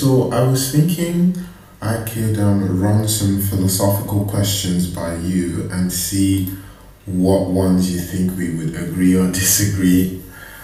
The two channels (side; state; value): both; identical; correlation 1.00